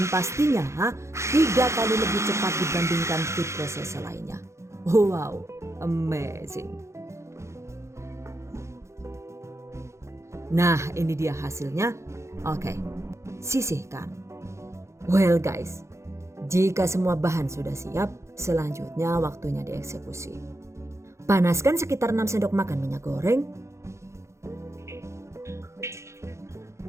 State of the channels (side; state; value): left; late; 0.14 ms